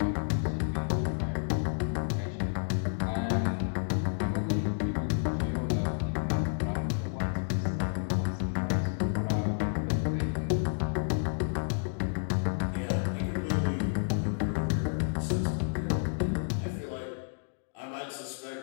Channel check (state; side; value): silent; right; digital silence